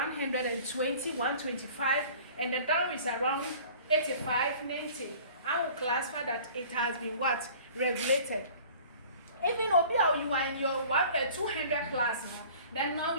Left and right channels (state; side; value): inverted; both; correlation -0.46